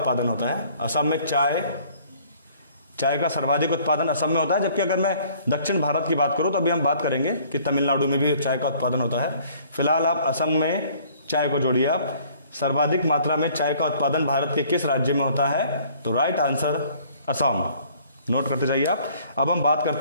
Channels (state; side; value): inverted; both; correlation -0.57